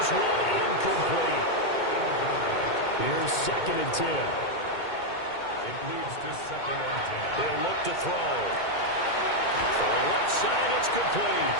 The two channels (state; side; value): late; right; 2.2 ms